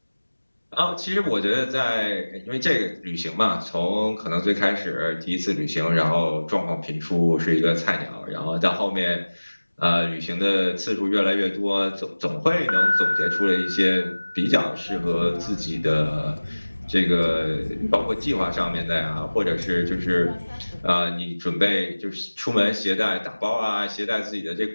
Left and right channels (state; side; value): inverted; both; correlation -1.00